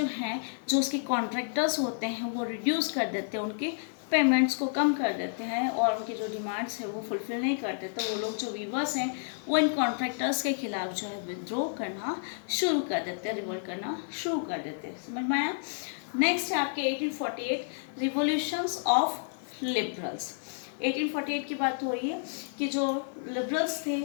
हैं, जो उसके कॉन्ट्रैक्टर्स होते हैं, वो रिड्यूस कर देते हैं, उनके पेमेंट्स को कम कर देते हैं और उनकी जो डिमांड्स है वो फुलफिल नहीं करते। तो वो लोग जो वीवर्स हैं वो इन कॉन्ट्रैक्टर्स के खिलाफ जो है विद्रोह करना शुरू कर देते हैं, रिवोल्ट करना शुरू कर देते हैं। समझ में आया? नेक्स्ट है आपके 1848 रिवोल्यूशंस ऑफ लिबरल्स। 1848 की बात हो रही है कि जो लिबरल्स थे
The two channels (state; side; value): silent; right; 58 dB below the other